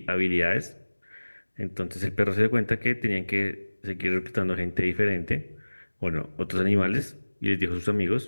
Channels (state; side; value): inverted; both; correlation -1.00